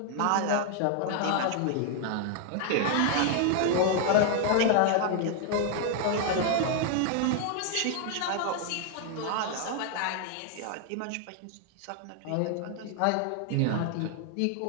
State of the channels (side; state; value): both; different; correlation 0.00